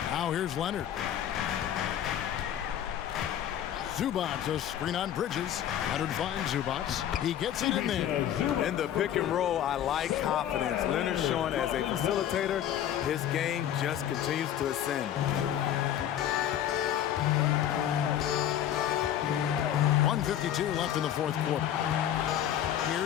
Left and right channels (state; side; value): quieter; right; 10.7 dB